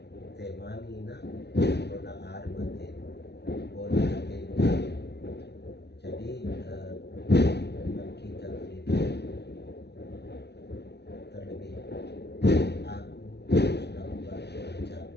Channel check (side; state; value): right; late; 0.49 ms